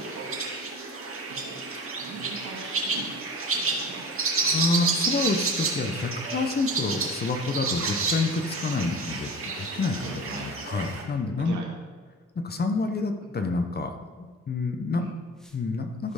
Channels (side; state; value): both; normal; correlation 0.37